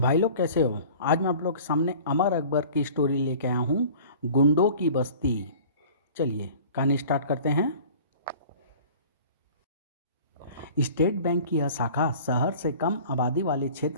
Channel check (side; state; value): both; inverted; correlation -0.44